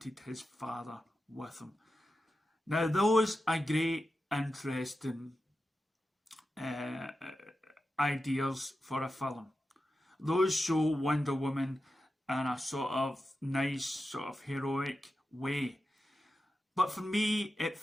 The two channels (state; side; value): normal; both; correlation 0.91